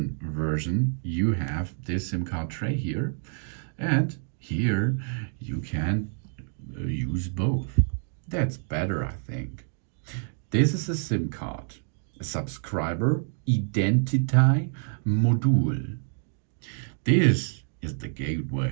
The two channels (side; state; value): left; silent; 59 dB below the other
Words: version, you have this SIM card tray here, and here you can use both. That's better, I think. This is a SIM card, a subscriber identity module. This is the